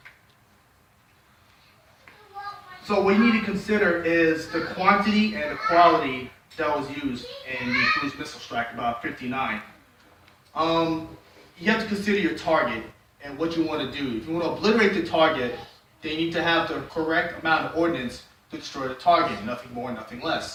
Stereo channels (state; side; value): identical; both; correlation 1.00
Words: so what you need to consider is the quantity and the quality that was used in the cruise missile strike, about 59. You have to consider your target and what you want to do. If you want to obliterate the target, then you need to have the correct amount of ordnance to destroy the target, nothing more, nothing